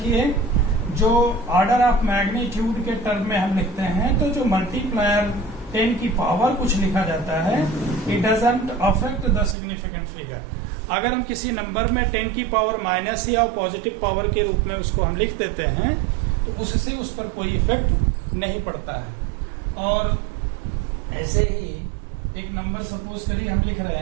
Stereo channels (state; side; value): drops out; left; at 9.6 s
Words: जो ऑर्डर ऑफ मैग्नीट्यूड के टर्म में हम लिखते हैं, तो जो मल्टीप्लायर 10 की पावर कुछ लिखा जाता है, it doesn't affect the significant figure. अगर हम किसी नंबर में 10 की पावर माइनस या पॉजिटिव पावर के रूप में उसको हम लिख देते हैं, तो उससे उस पर कोई इफेक्ट नहीं पड़ता है। और ऐसे ही एक नंबर सपोज करिए हम लिख